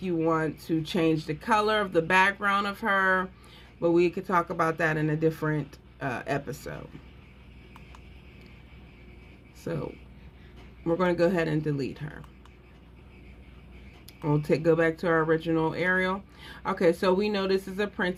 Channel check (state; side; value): identical; both; correlation 1.00